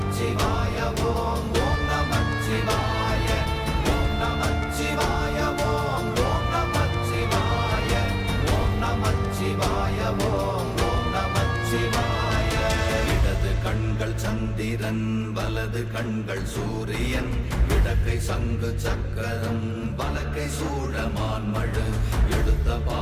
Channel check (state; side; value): identical; both; correlation 1.00